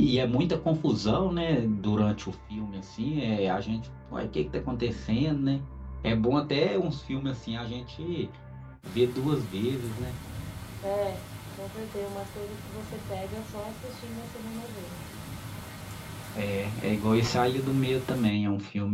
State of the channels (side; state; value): both; identical; correlation 1.00